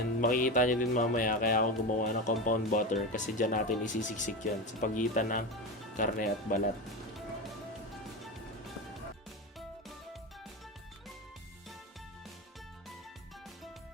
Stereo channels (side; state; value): both; normal; correlation 0.20